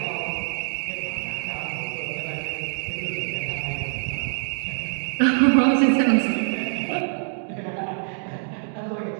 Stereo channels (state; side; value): silent; left; digital silence